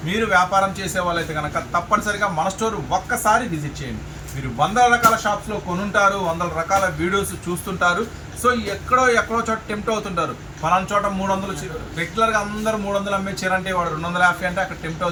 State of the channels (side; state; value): both; identical; correlation 1.00